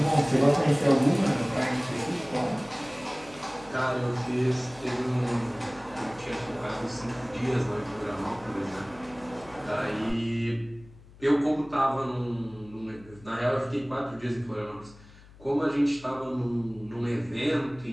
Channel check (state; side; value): noise; left; hum, 22 dB below the sound